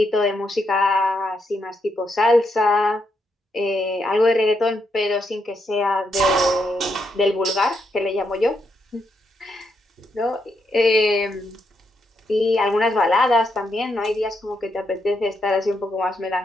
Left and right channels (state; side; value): normal; both; correlation 0.80